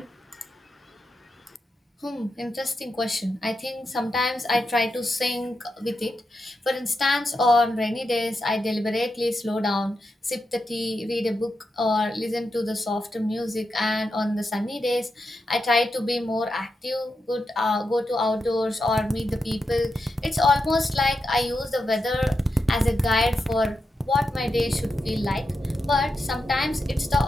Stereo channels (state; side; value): normal; both; correlation 0.87